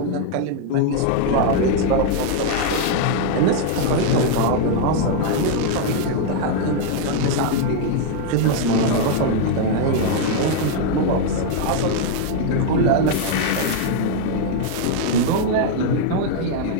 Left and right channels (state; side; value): different; both; correlation 0.00